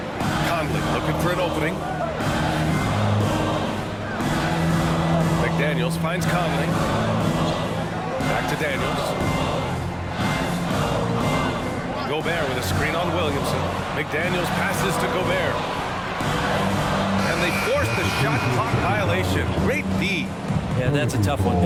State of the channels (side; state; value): both; identical; correlation 1.00